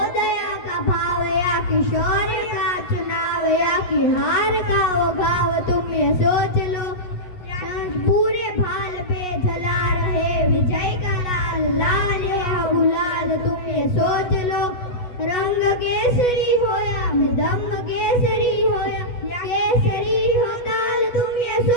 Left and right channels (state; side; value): late; right; 8.2 ms